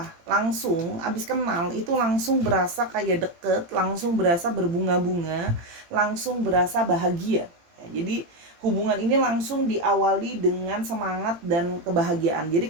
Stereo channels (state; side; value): late; left; 17 ms